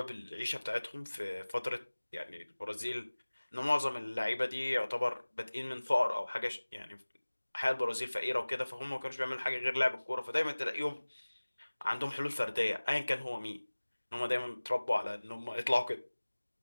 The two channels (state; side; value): inverted; both; correlation -1.00